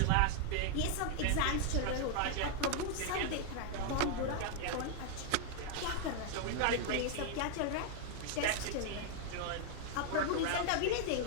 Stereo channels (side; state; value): both; different; correlation 0.00